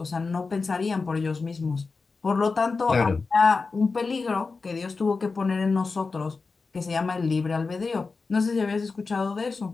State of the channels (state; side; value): quieter; right; 4.3 dB